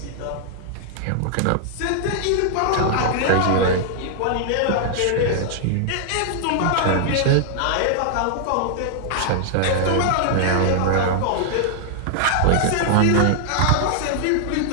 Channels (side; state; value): both; different; correlation -0.01